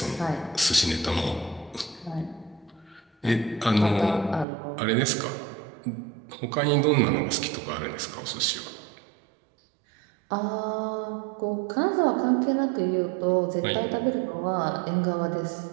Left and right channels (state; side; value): drops out; left; at 4.5 s